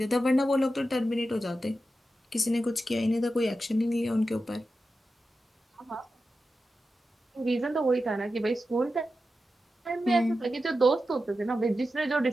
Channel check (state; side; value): normal; both; correlation 0.91